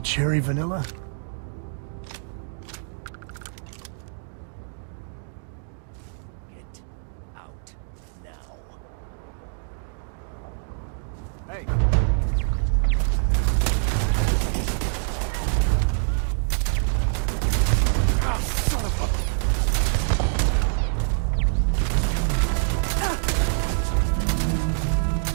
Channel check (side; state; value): left; silent; digital silence